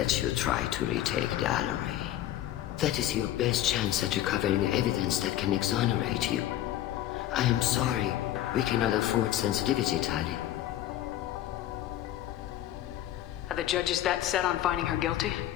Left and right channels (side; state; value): right; quieter; 13.0 dB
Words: you try to retake the Alarai. That is your best chance at recovering evidence that can exonerate you. I am sorry. We cannot afford sensitivity, Tali. Are the judges that set on finding her guilty?